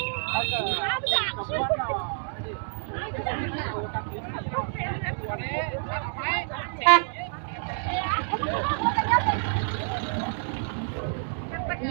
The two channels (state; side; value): silent; left; 59 dB below the other